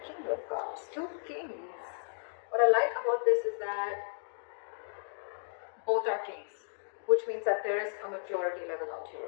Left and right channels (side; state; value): right; silent; digital silence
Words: King of Cups, two kings. What I like about this is that both are kings, which means that there is a maturity level out